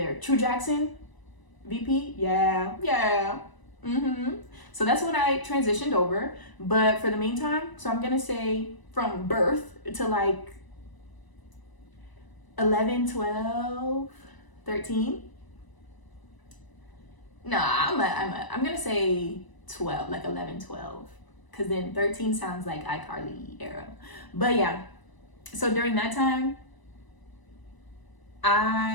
True Jackson, VP, yeah. So that's when I transitioned over. But for the meantime, so I'm gonna say from birth to like 11, 12, 13. Nah, I'm gonna say 12, like 11, 12. Because then 13 sounds like iCarly era. But yeah, so during that time,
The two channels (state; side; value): late; right; 1.0 ms